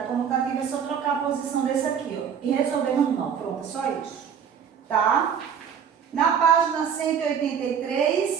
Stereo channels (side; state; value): left; quieter; 7.6 dB